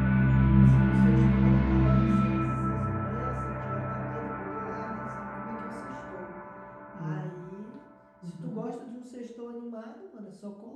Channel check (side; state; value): both; identical; correlation 1.00